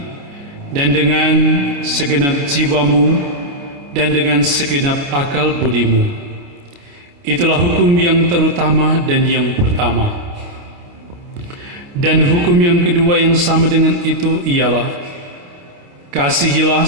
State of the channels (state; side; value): late; left; 28 ms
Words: dan dengan segenap jiwamu, dan dengan segenap akal budimu." Itulah hukum yang terutama dan yang pertama. Dan hukum yang kedua yang sama dengan itu ialah, kasihilah